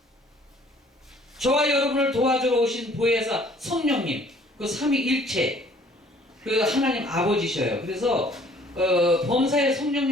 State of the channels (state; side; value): normal; both; correlation 0.56